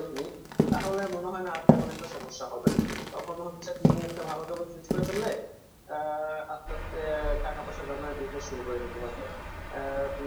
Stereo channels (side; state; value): both; identical; correlation 1.00